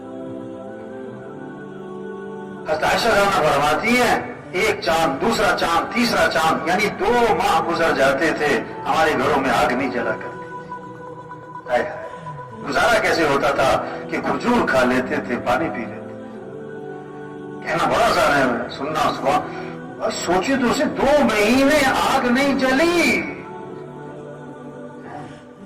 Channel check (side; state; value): both; identical; correlation 1.00